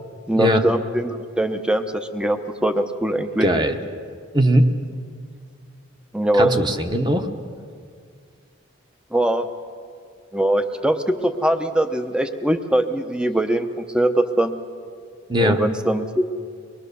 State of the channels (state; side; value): normal; both; correlation 0.80